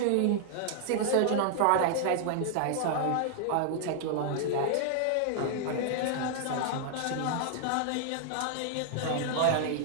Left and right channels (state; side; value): different; both; correlation -0.01